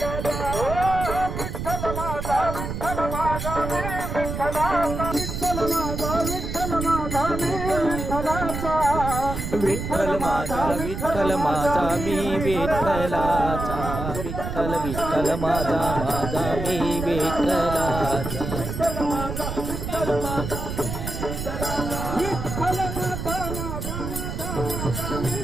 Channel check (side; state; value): right; noise; rumble, 5 dB below the sound